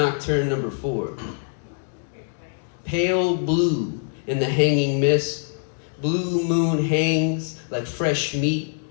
number 4. Pale blue in the hanging mist. Blue moon hangs like fresh meat,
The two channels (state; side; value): silent; right; digital silence